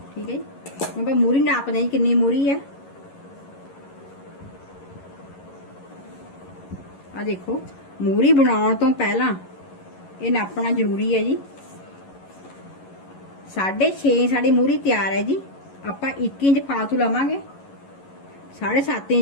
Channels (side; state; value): right; late; 11 ms